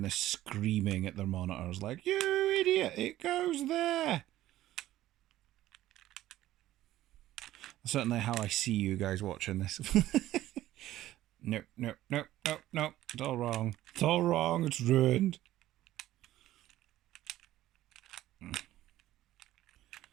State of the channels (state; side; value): quieter; left; 14.5 dB